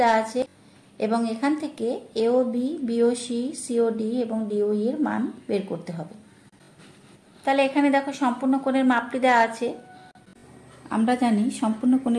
দেওয়া আছে এবং এখান থেকে এওবি, বিওসি, সিওডি এবং ডিওই এর মান বের করতে হবে। তাহলে এখানে দেখো সম্পূর্ণ কোণের মাপটি দেওয়া আছে। আমরা জানি সম্পূর্ণ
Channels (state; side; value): identical; both; correlation 1.00